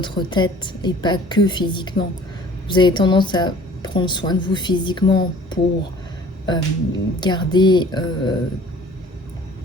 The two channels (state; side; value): normal; both; correlation 0.49